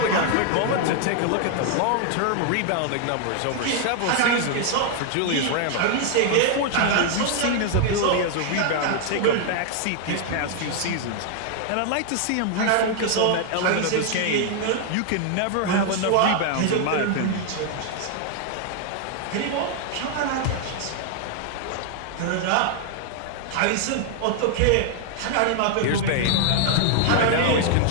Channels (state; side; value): different; both; correlation 0.00